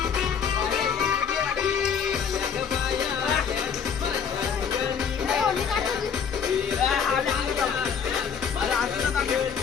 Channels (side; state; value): right; quieter; 7.1 dB